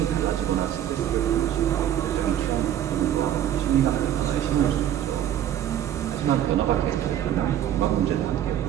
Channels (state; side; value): quieter; left; 11.0 dB